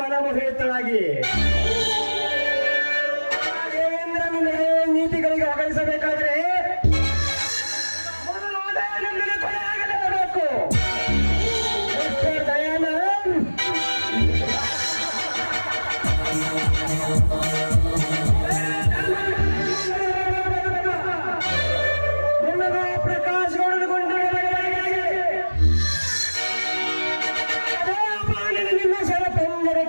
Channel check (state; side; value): inverted; both; correlation -1.00